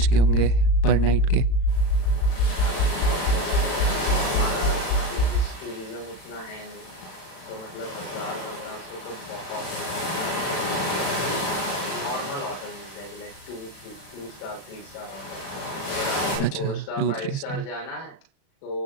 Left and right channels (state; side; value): late; right; 36 ms